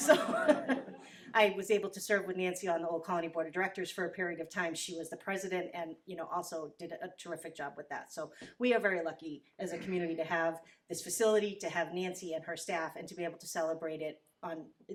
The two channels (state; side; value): identical; both; correlation 1.00